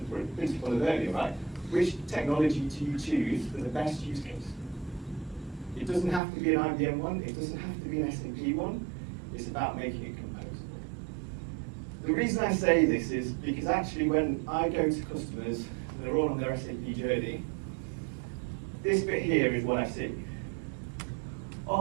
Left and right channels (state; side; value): drops out; left; at 6.2 s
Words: The principle of earlier, right? Which technology do you choose for the best use case? It doesn't have to be an IBM one, it doesn't have to be an SAP one, it's about making it composable. The reason I say this is because actually when I go to customers, and they're all on their SAP journey, this bit here is what I see.